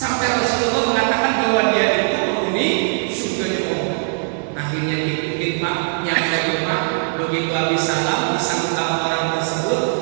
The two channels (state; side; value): silent; left; 58 dB below the other